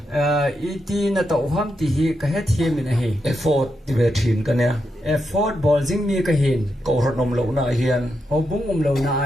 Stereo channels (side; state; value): both; normal; correlation 0.84